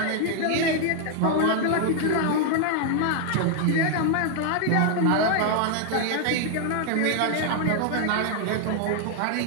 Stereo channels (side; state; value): both; different; correlation 0.00